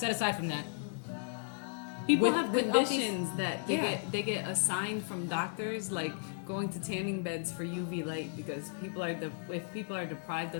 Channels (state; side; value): silent; right; 55 dB below the other